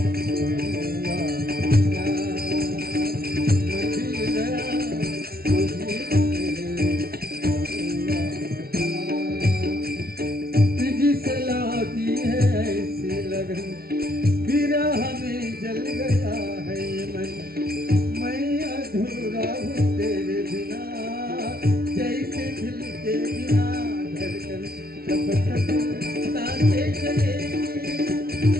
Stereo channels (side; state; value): left; late; 0.44 ms